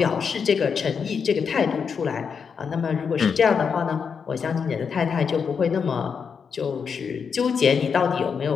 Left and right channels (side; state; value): right; quieter; 6.3 dB